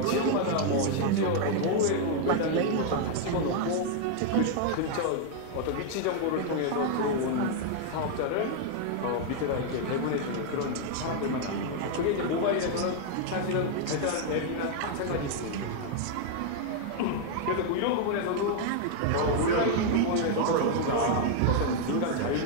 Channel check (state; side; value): different; both; correlation 0.00